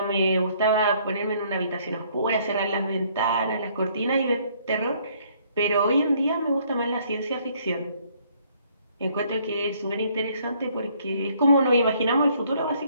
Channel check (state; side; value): inverted; both; correlation -0.64